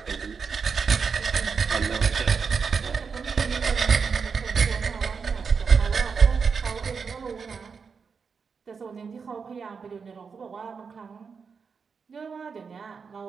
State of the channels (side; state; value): left; quieter; 5.6 dB